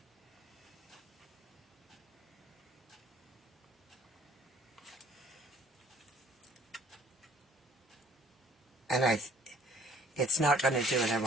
And it's not going to do what I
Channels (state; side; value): normal; both; correlation 0.57